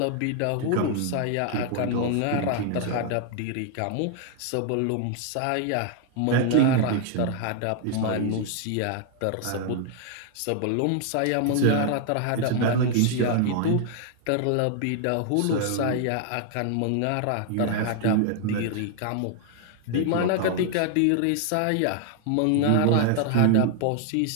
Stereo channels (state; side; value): different; both; correlation 0.00